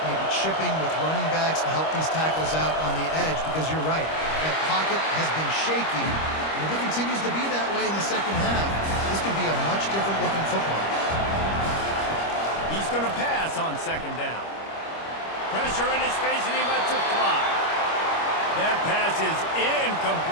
maybe chipping with running backs to help these tackles out on the edge, because you're right. That pocket has been shaky, and if it continues to be that way in the second half, this could be a much different looking football. He's going to pass on second down. Pressure in his face, and he lets it fly. That pass is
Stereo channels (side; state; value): right; late; 25 ms